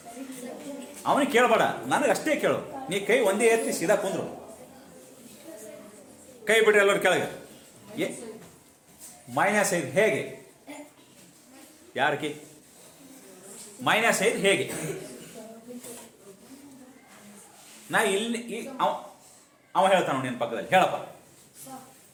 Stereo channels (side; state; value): both; identical; correlation 1.00